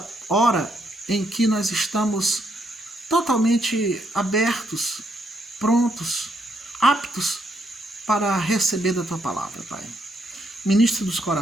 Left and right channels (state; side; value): normal; both; correlation 0.75